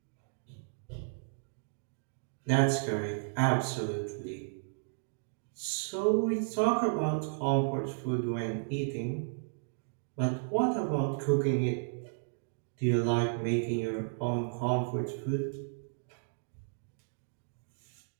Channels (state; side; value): silent; left; digital silence